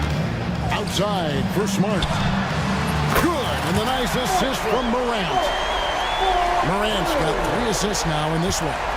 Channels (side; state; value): both; identical; correlation 1.00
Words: Outside for Smart. Good. And the nice assist from Morant. Morant's got 3 assists now in this one.